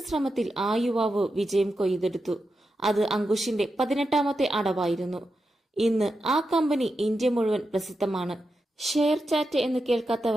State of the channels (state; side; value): normal; both; correlation 0.88